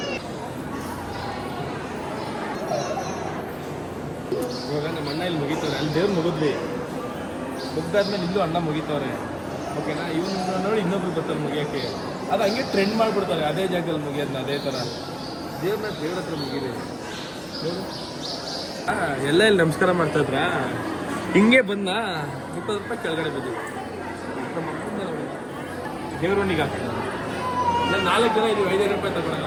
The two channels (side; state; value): both; identical; correlation 1.00